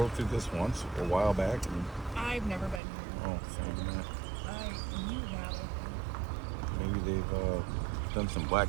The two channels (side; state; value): left; drops out; at 2.8 s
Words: through this once a while back. And, I've never been here. oh, maybe not. You have, I think. Maybe they've done some